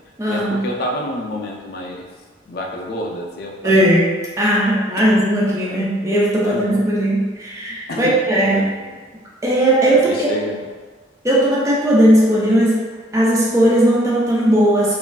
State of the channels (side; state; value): both; normal; correlation 0.61